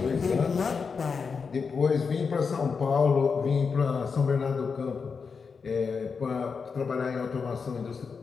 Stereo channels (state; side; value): quieter; right; 5.4 dB